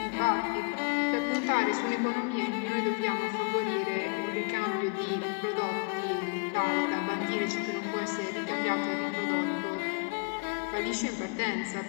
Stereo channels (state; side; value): quieter; right; 34.2 dB